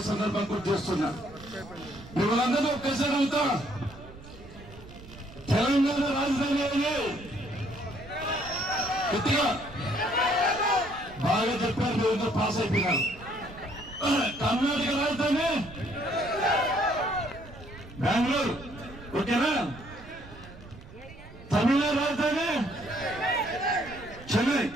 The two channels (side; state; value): right; noise; rumble, 18 dB below the sound